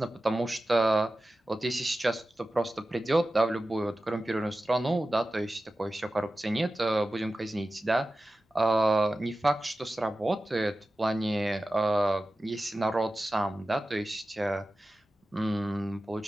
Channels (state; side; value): normal; both; correlation 0.94